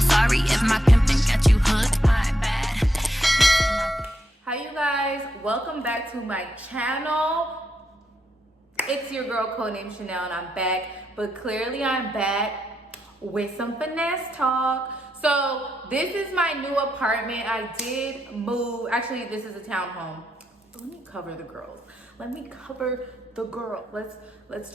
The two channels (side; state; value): both; normal; correlation 0.81